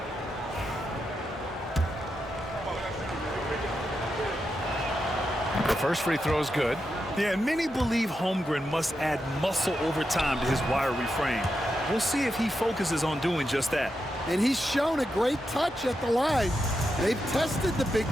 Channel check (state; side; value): normal; both; correlation 0.86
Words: The first free throw is good. Yeah, and many believe Holmgren must add muscle over time to his wiry frame. We'll see if he focuses on doing just that. And he's shown a great touch at the line. They've tested the big